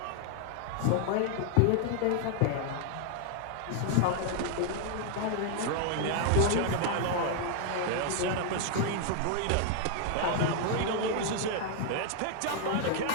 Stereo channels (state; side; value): different; both; correlation 0.00